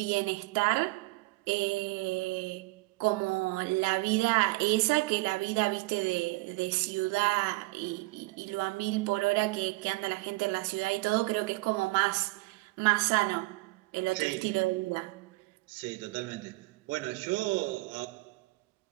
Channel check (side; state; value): left; quieter; 22.7 dB